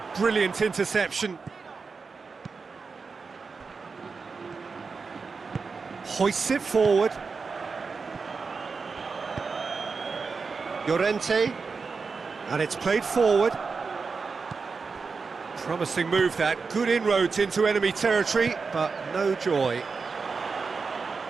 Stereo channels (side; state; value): left; quieter; 4.8 dB